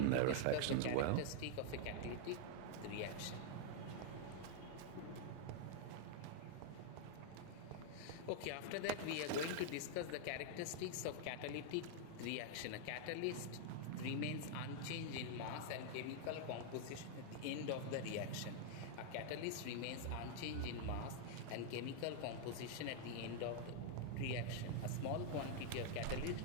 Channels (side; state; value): both; different; correlation -0.01